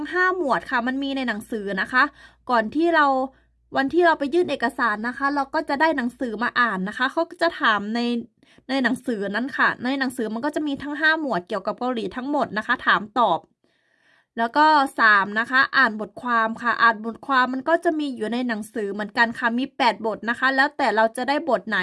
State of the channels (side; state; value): both; identical; correlation 1.00